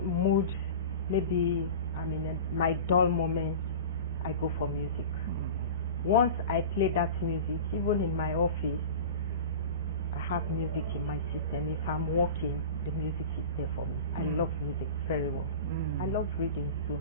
maybe I'm in my dull moment, I go for music. Once I play that music, even in my office, I have music in my system. If I'm working, the music is there for me. I love music very well. I love reading too,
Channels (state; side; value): inverted; both; correlation -0.33